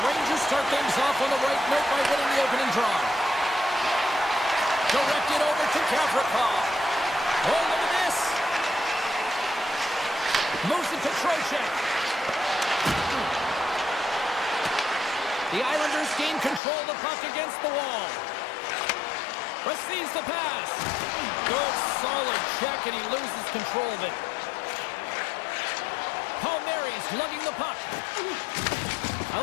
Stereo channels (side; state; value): right; drops out; at 16.6 s